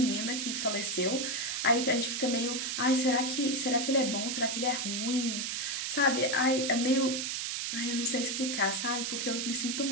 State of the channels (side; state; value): right; noise; hiss, 2 dB below the sound